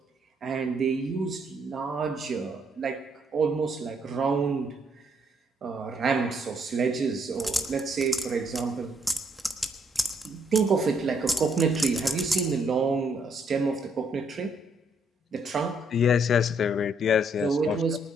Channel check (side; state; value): both; normal; correlation 0.71